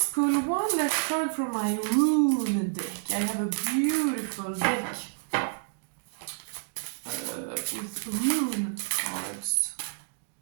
pull one last card from my rune deck. I have a beautiful deck with rune cards.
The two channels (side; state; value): left; silent; digital silence